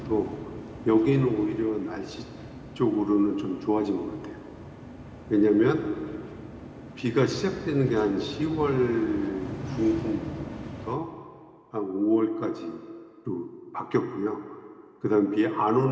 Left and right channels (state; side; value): identical; both; correlation 1.00